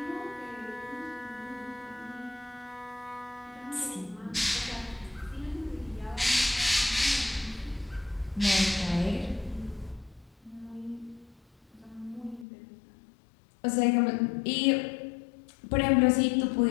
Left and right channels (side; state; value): right; drops out; at 12.5 s